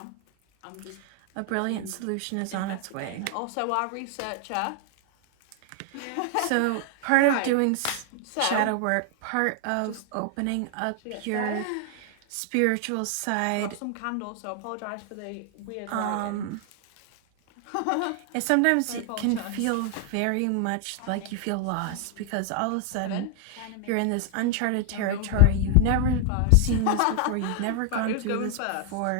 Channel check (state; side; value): different; both; correlation 0.00